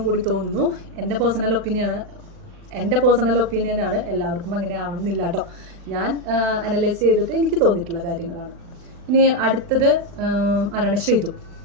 കൂടി തോന്നുന്നു. എൻ്റെ പേഴ്സണൽ ഒപ്പീനിയനാണ്. എല്ലാവർക്കും അങ്ങനെ ആവണം എന്നില്ല കേട്ടോ. ഞാൻ അനലൈസ് ചെയ്തിട്ട് എനിക്ക് തോന്നിയിട്ടുള്ള കാര്യങ്ങളാണ്. ഇനി അടുത്തത് ആരാണ്?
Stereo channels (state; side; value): late; left; 39 ms